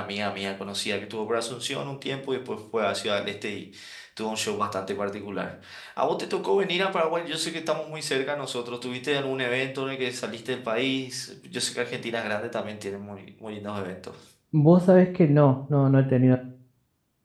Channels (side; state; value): both; identical; correlation 1.00